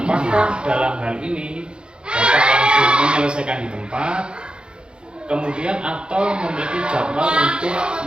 dalam hal ini Bapak langsung menyelesaikan di tempat, kemudian atau memiliki jadwal untuk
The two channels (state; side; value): late; left; 0.051 ms